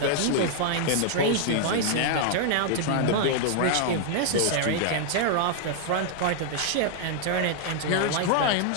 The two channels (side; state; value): both; different; correlation 0.00